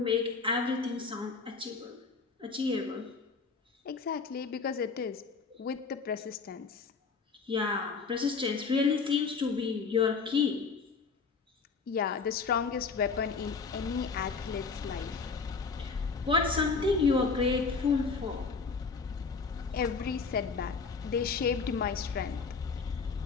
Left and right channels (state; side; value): quieter; right; 4.9 dB